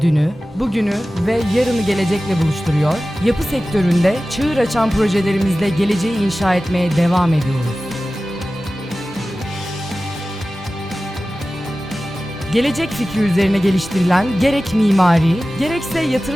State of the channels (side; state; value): both; normal; correlation 0.96